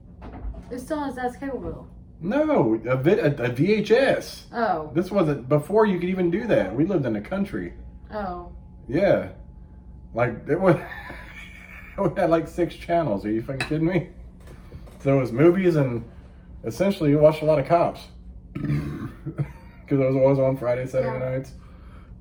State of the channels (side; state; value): both; identical; correlation 1.00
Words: It's still on his dad's cable bill. No, a VHS. Oh. This wasn't before you could even do that. We lived in the country. Oh. Yeah. Like, it was, we had like 6 channels. Are you fucking kidding me? So it was movies and essentially you watched a lot of Cops. Because it was always on Friday, Saturday nights.